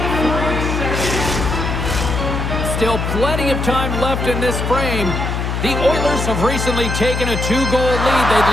Still plenty of time left in this frame. The Oilers have recently taken a 2-goal lead. They'd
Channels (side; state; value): left; noise; hum, 2 dB below the sound